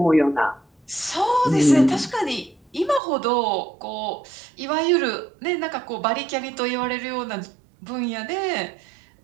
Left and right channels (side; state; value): left; drops out; at 3.0 s